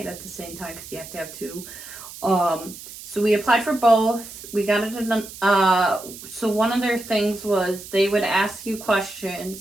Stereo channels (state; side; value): noise; right; hiss, 14 dB below the sound